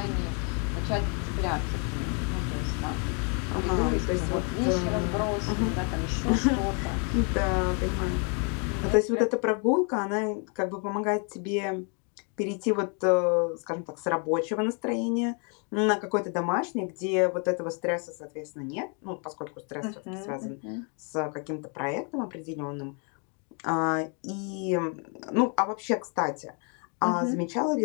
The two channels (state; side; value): quieter; right; 38.1 dB